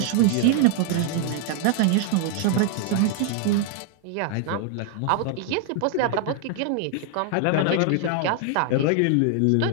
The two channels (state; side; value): different; both; correlation 0.00